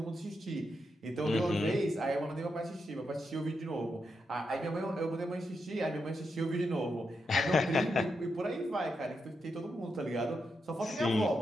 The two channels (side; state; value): both; normal; correlation 0.84